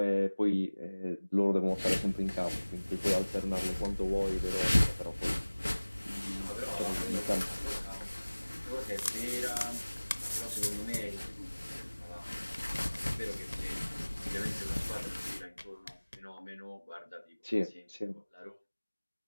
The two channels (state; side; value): inverted; both; correlation -1.00